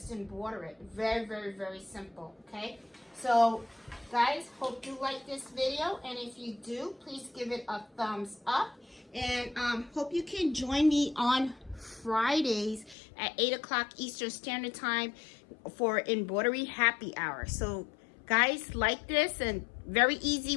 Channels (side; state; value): right; drops out; at 13.0 s